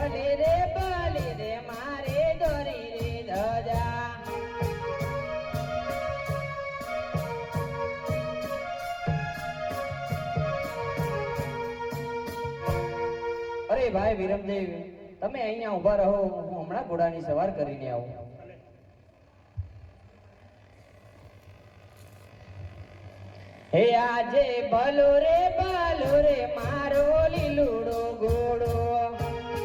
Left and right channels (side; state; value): both; identical; correlation 1.00